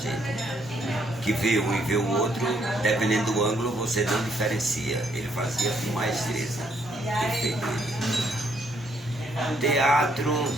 Que vê um e vê o outro, dependendo do ângulo, você não diferencia. Ele fazia com maestreza. Perfeito. Teatro,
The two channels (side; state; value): both; normal; correlation 0.71